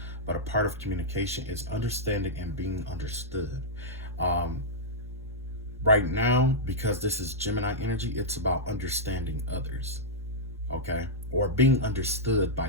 but a part of communication is understanding and being understood. Right now, because this is Gemini energy, it's about understanding others, okay, or being understood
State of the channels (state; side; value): normal; both; correlation -0.08